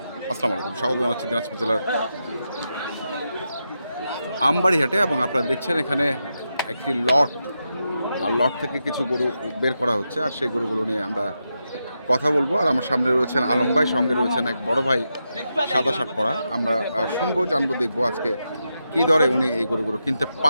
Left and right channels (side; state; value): both; inverted; correlation -0.87